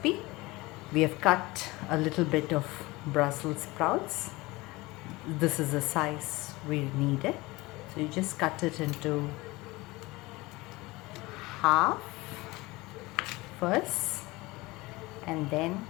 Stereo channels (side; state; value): right; quieter; 21.6 dB